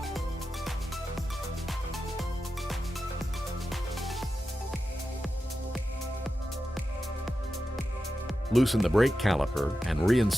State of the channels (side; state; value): both; normal; correlation 0.91